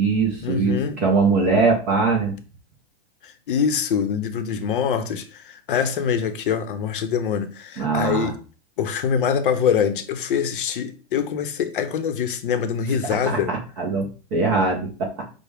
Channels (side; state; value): both; normal; correlation 0.14